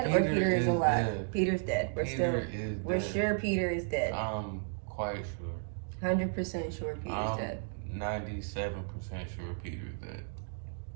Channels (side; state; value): left; silent; digital silence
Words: or Peter is alive? Dead. Peter's dead. We're Dead. sure Peter is dead. I'm quite sure. 100% sure Peter's dead. 97% sure Peter's dead.